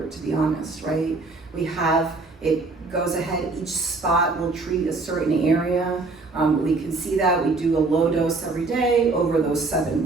to be honest, right? We have, it goes ahead, each spot will treat a certain area. We can see that, we do a low dose every day, over those 7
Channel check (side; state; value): left; quieter; 3.7 dB